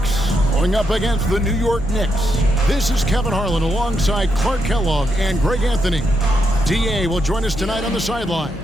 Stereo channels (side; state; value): left; noise; hum, 12 dB below the sound